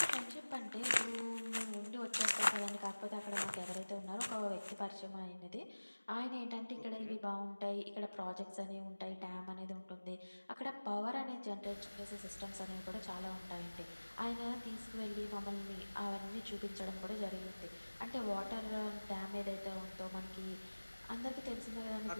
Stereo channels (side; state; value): both; inverted; correlation -1.00